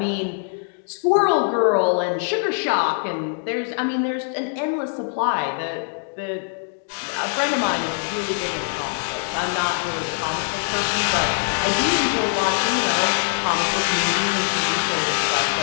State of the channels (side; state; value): right; silent; 64 dB below the other